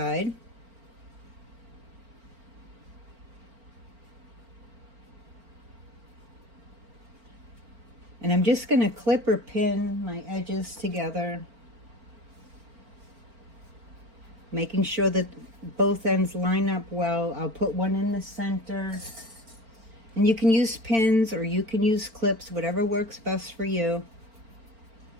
And I'm just going to clip or pin my edges together, making sure that both ends line up well. I'll put one in the center. And you can use pins or you can use clips, whatever works best for you.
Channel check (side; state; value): left; late; 4.4 ms